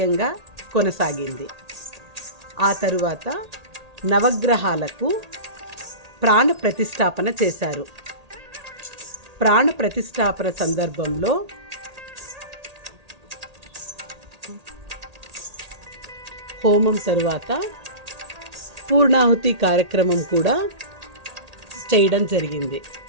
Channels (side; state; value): left; late; 1.8 ms